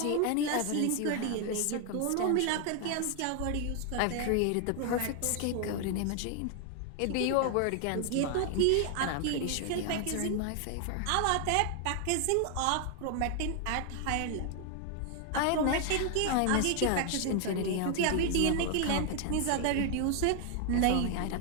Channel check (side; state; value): both; different; correlation 0.00